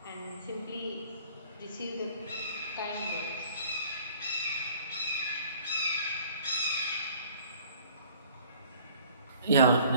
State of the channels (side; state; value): both; inverted; correlation -0.53